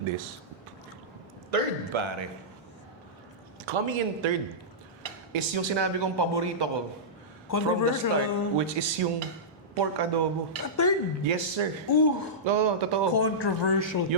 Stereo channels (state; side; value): normal; both; correlation -0.15